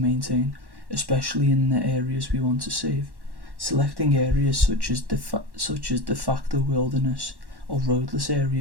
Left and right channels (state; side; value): late; left; 1.1 ms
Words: especially in the areas we want to save. Selecting areas such as de facto wilderness or roadless